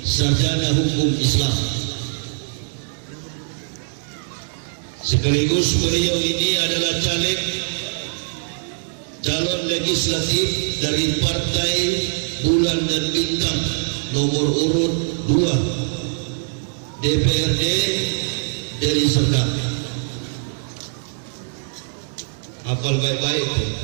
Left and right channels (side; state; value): left; silent; digital silence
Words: sarjana hukum Islam. Sekaligus beliau ini adalah calon legislatif dari Partai Bulan dan Bintang nomor urut 2 DPRD Deli Serdang. Hafal baik-baik.